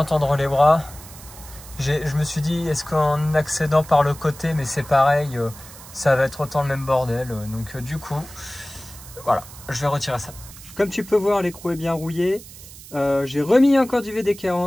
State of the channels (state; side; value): noise; right; hiss, 17 dB below the sound